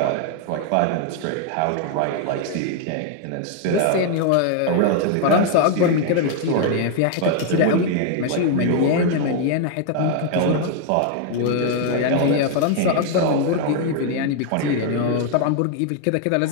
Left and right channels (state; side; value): different; both; correlation 0.00